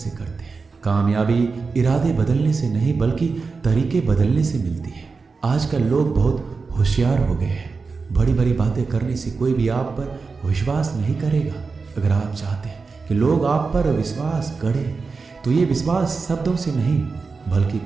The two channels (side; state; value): left; quieter; 4.5 dB